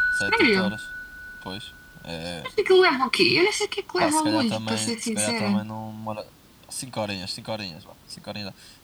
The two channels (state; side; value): identical; both; correlation 1.00